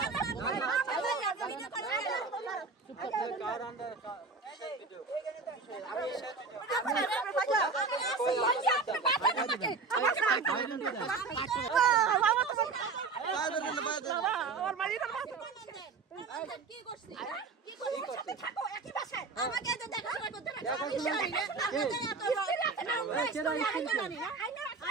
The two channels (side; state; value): left; quieter; 4.4 dB